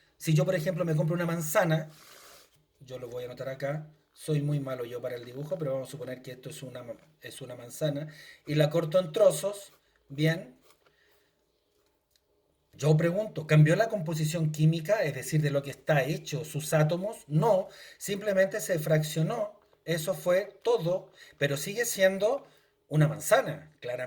Si yo, por ejemplo, me compro una manzana, yo lo voy a anotar acá, soy muy malo yo para el dibujo, pero vamos a suponer que esto es una manzana, y la corto en trozos, bien, yo pregunto, ¿cambió la composición química, es decir, de lo que está hecho sus átomos? No, simplemente se fraccionó. Eso fue todo, pero sigue siendo una manzana,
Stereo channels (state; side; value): identical; both; correlation 1.00